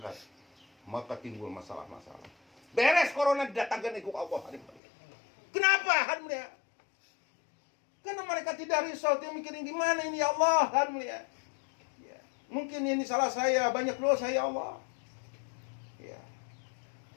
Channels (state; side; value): drops out; right; at 4.8 s